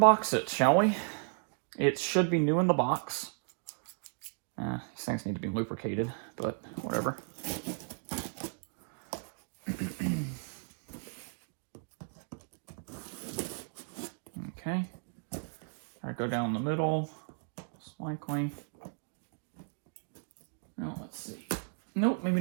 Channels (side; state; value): left; silent; 55 dB below the other